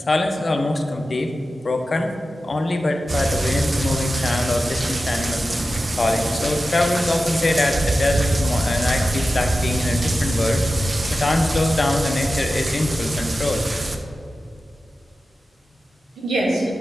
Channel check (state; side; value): normal; both; correlation 0.93